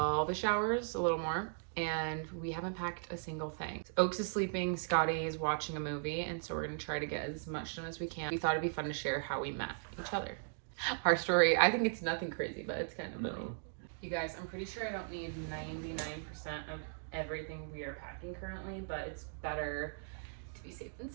hours, a little more, and we haven't packed a single thing. Oaks is sleeping, Scotty is watching a movie, and so we're gonna try to get as much done as we can. We thought it'd be fun to share how we met each other. Our story, I think it's nothing crazy, but it's kind of funny. You guys, I'm pretty sure I don't need 99% of everything we are packing currently, but it's better to be safe than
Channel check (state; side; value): silent; left; digital silence